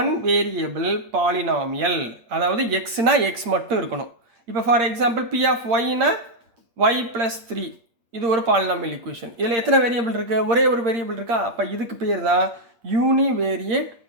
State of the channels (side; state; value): left; late; 8.6 ms